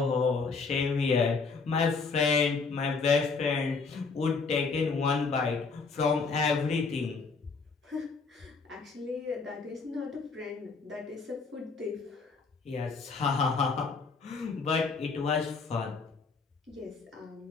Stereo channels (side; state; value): right; quieter; 4.6 dB